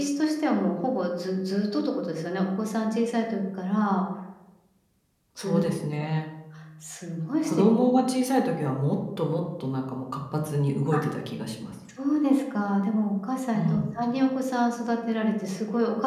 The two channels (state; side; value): identical; both; correlation 1.00